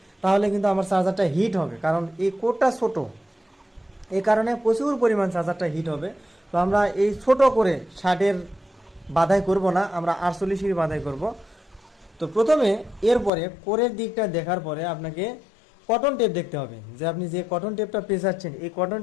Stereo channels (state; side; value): drops out; right; at 13.3 s